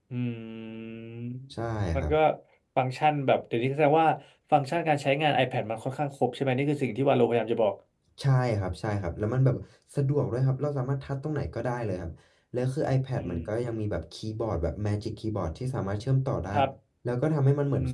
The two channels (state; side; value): identical; both; correlation 1.00